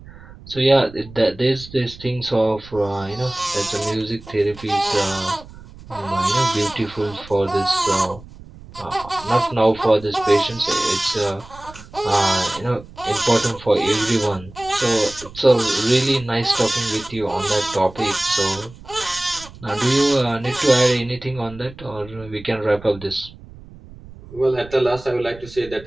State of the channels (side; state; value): right; noise; rumble, 18 dB below the sound